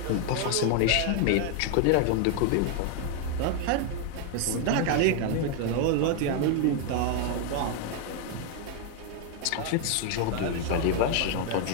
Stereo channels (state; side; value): different; both; correlation 0.00